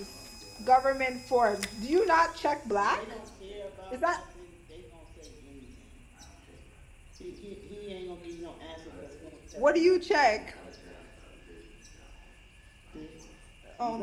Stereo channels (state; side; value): identical; both; correlation 1.00